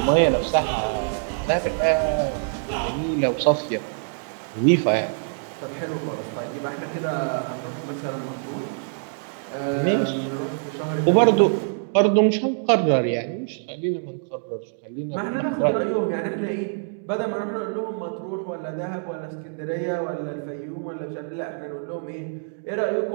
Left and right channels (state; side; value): silent; left; digital silence